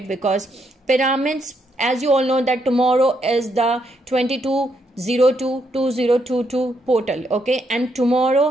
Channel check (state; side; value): normal; both; correlation 0.76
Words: because pyramids, as you all know, that tomorrow is the 22/02/2022 portal. Okay, and